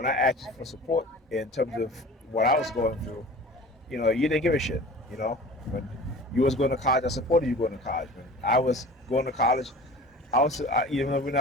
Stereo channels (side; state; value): both; normal; correlation 0.40